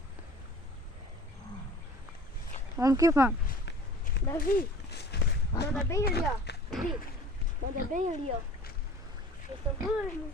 Vamos que vamos. Davi, manda bem ali, ó. Davi, manda bem ali, ó. Eu tô doido,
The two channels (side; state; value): both; normal; correlation 0.45